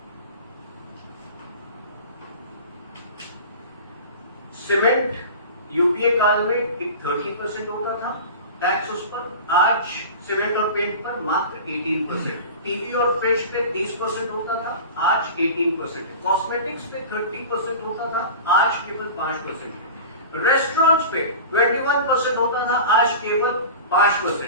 सीमेंट यूपीए काल में 30% होता था टैक्स उस पर. आज सीमेंट और पेंट पर मात्र 18%. टीवी और फ्रिज पे 30% होता था, आज 18%. कॉस्मेटिक्स पे 30% होता था, आज केवल 5%. रेस्टोरेंट्स पे 21% होता था, आज केवल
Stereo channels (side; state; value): both; inverted; correlation -0.34